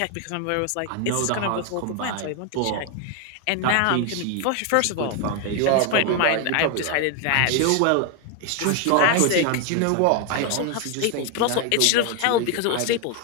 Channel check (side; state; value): both; different; correlation 0.01